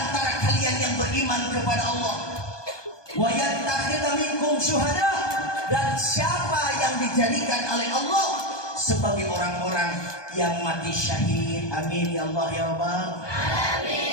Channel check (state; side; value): late; right; 1.2 ms